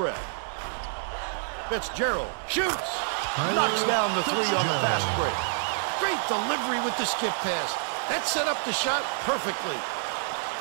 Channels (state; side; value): silent; left; 59 dB below the other